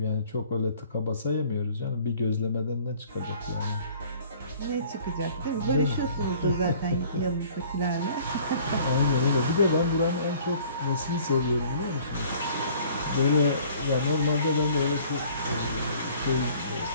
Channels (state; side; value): inverted; both; correlation -0.53